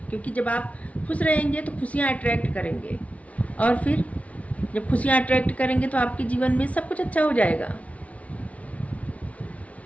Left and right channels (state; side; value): late; right; 0.066 ms